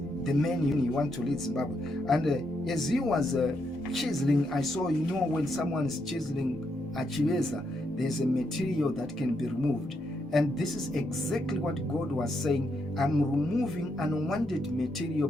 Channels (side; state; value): both; normal; correlation 0.79